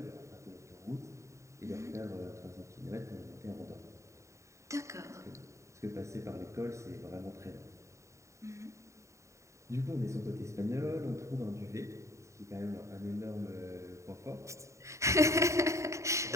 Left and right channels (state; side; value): late; left; 0.14 ms